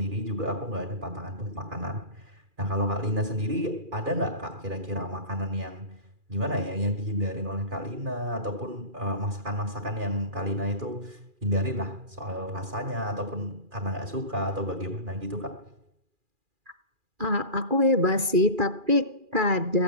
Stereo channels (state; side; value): late; left; 2.4 ms